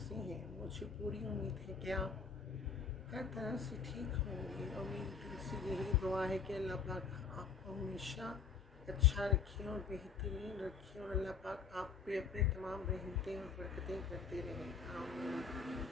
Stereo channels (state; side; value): quieter; right; 5.7 dB